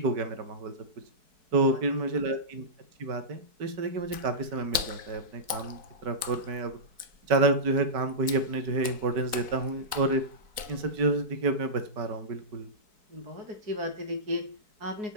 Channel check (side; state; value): left; late; 4.6 ms